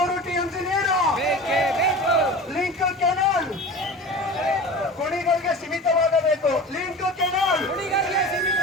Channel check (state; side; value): normal; both; correlation 0.35